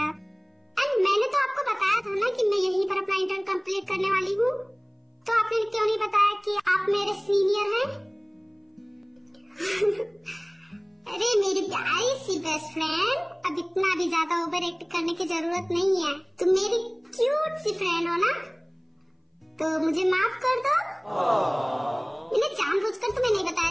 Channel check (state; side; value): identical; both; correlation 1.00